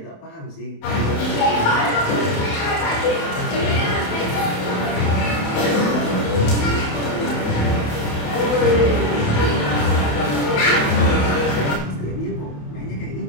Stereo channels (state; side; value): late; right; 28 ms